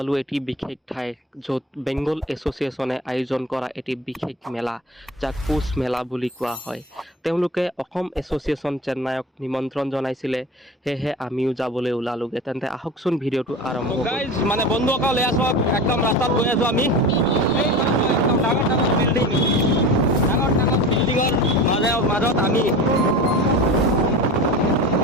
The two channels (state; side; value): normal; both; correlation 0.32